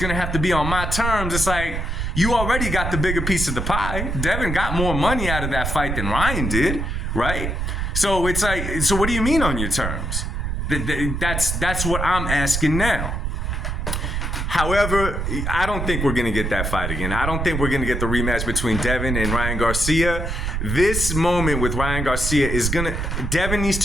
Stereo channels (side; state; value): right; noise; rumble, 2 dB below the sound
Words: to have to be on my terms, it's like, you already got the bigger piece of the pie. Devin got more money out of that fight than Ryan did, right? So it's like, so what do you mean on your terms? That's what I'm asking now. However, I don't think we're going to get that fight again. I don't think we're going to get the rematch between Devin and Ryan Garcia. This moment with Ryan Garcia Devin needs